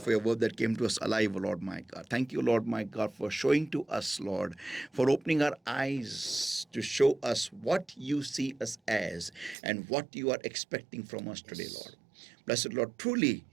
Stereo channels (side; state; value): left; drops out; at 9.6 s